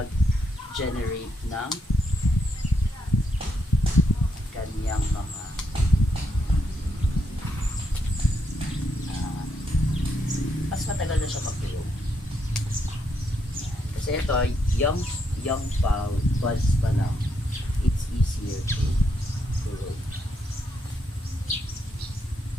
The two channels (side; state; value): both; normal; correlation 0.78